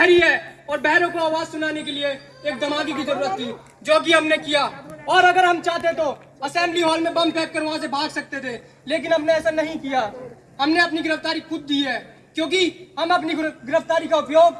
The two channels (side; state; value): both; identical; correlation 1.00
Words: है और बहरों को आवाज सुनाने के लिए एक धमाके की जरूरत थी, जो कि हमने किया। और अगर हम चाहते तो असेंबली हॉल में बम फेंक कर वहां से भाग सकते थे, लेकिन हमने ऐसा नहीं किया। हमने अपनी गिरफ्तारी खुद दी है, क्योंकि हम अपनी गिरफ्तारी का उपयोग